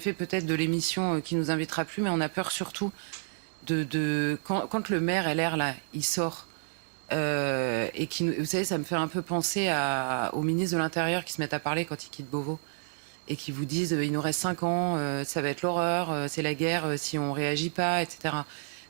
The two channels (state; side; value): silent; left; digital silence